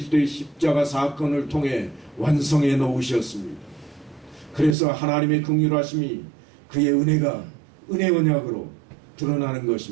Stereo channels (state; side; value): drops out; left; at 4.8 s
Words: 십자가 사건을 통해 완성해 놓으셨습니다. 그래서 하나님의 긍휼하심이 그의 은혜가 은혜 언약으로 드러나는